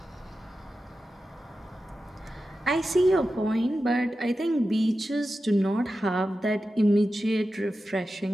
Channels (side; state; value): both; normal; correlation 0.92